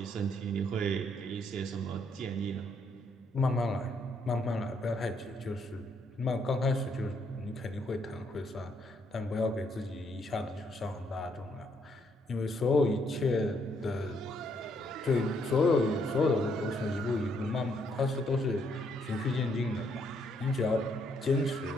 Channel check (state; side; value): normal; both; correlation 0.72